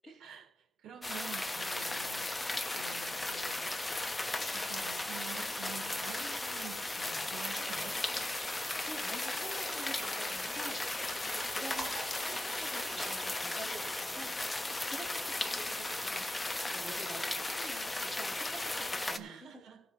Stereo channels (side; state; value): both; normal; correlation 0.92